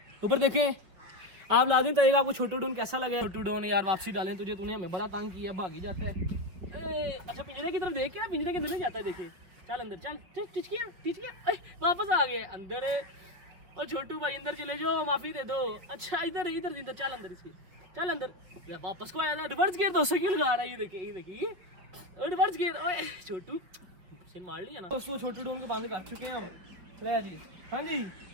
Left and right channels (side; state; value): left; late; 5.1 ms